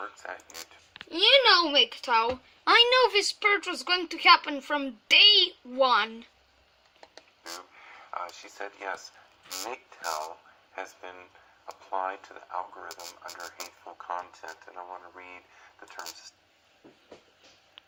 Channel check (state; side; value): identical; both; correlation 1.00